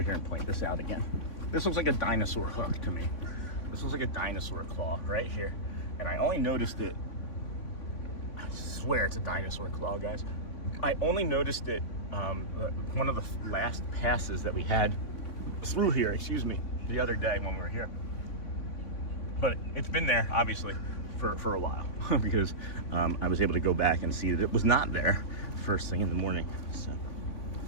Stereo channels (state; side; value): late; right; 3.5 ms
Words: here and point this out again. This looks like a dinosaur hook to me. This looks like a dinosaur claw right here. And I only noticed it, I swear it's a dinosaur claw, guys. I only noticed it one of the last passes that we had through here, excuse me, the other day when we were here. but it's been there obviously for a while because I was able to go back and see that it was not there first thing in the morning. So,